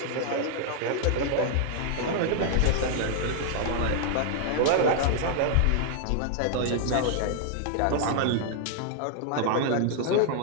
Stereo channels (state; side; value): different; both; correlation -0.01